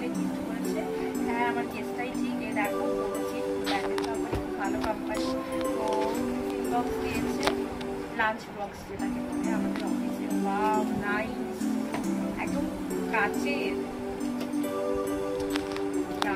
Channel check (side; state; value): both; identical; correlation 1.00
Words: গিফট করেছে। হ্যাঁ আমার কেসটাই ঠিক। এই দেখো প্যাকেট কোম্পানি, খুব ভালো কোম্পানি। তো টিফিন বক্স দিয়েছে, লাঞ্চ বক্স যেটাকে বলে আমাদের অফিসে। ওয়াও নাইস, একদম কাচের,